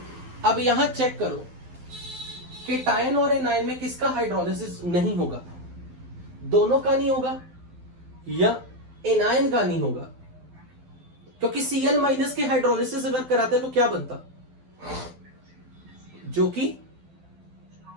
अब यहां चेक करो कि टायन और एनायन में किसका हाइड्रोलिसिस नहीं होगा? दोनों का नहीं होगा या एनायन का नहीं होगा? क्योंकि Cl माइनस के हाइड्रोलिसिस अगर कराते तो क्या बनता, जो कि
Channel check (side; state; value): left; late; 12 ms